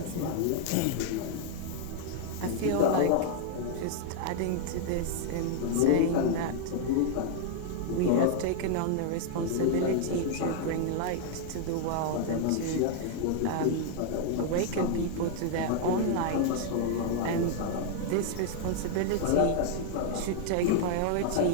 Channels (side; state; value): both; different; correlation 0.00